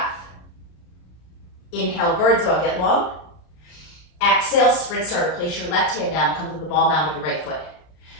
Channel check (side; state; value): right; late; 33 ms